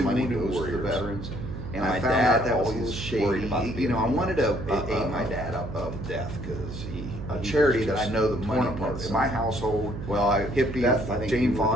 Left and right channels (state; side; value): noise; right; hum, 8 dB below the sound